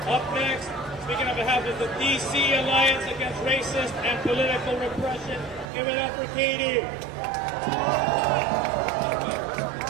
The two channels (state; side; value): drops out; left; at 5.7 s